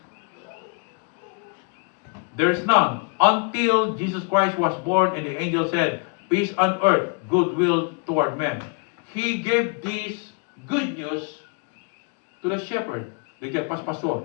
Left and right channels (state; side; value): quieter; right; 36.8 dB